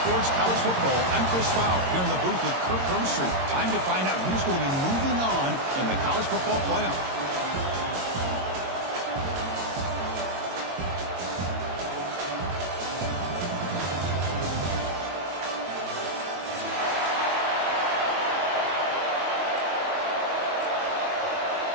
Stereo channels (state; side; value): late; left; 22 ms